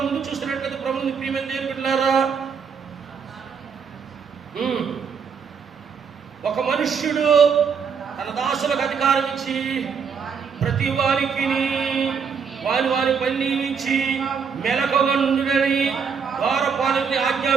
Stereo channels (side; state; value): left; quieter; 6.3 dB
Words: ముందు చూస్తున్నట్లయితే ప్రభువుని ప్రియమైన దేవుని బిడ్డలారా, ఒక మనుష్యుడు తన దాసులకు అధికారం ఇచ్చి ప్రతి వారికి వారి పని నియమించి మెలకువగా నుండునని ద్వారపాలకుని